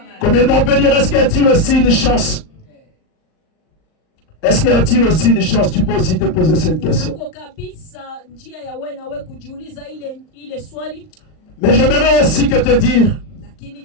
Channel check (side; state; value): right; late; 38 ms